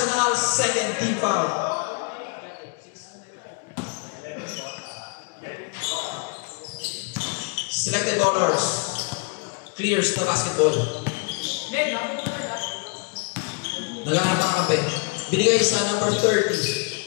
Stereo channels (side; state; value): right; quieter; 34.4 dB